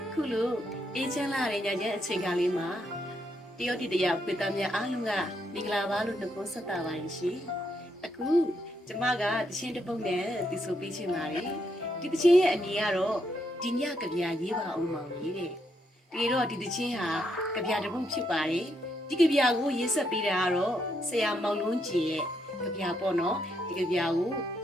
အခုလိုအေးချမ်းလာတဲ့ညချမ်းအချိန်ကားလေးမှာတယောက်တယောက်ပြည်သားများအားလုံးကမင်္ဂလာပါလို့နှုတ်ခွန်းဆက်တာပါရှင်အခုကျမကတခြင်းတစ်ပုတ်နဲ့တီဆိုပေးချင်ပါတယ်ဒီတခြင်းရဲ့အမည်ကတော့ဒီညကဗျာရေးပါအောင်မောင်ကြီးတဲ့ဒီတော့ဒီတခြင်းဟာကဗျာတစ်ပုတ်ဖြစ်ပါတယ်ဒီကဗျာကိုရေးဆက်ပေးတာကတော့ဆရာမောင်လုံးကျင်ရဲ့ကဗျာပေါ့နော်ဒီကဗျာကို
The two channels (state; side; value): normal; both; correlation 0.78